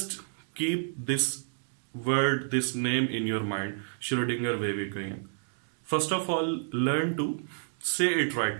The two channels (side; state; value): left; silent; digital silence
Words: keep this word, this name in your mind, Schrodinger wave equation. First of all, learn to say it